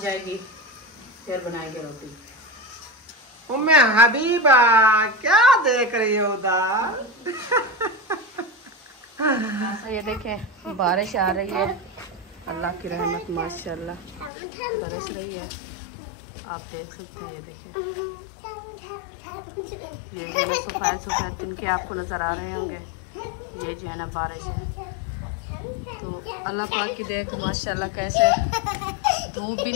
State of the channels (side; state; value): right; drops out; at 14.3 s